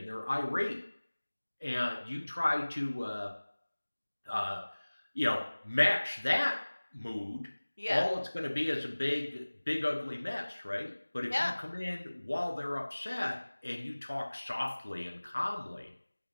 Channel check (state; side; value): inverted; both; correlation -1.00